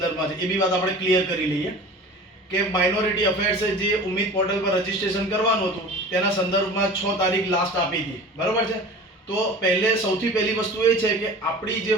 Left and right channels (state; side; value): normal; both; correlation 0.39